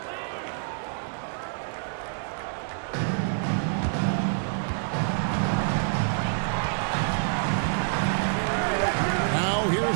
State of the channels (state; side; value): silent; left; 60 dB below the other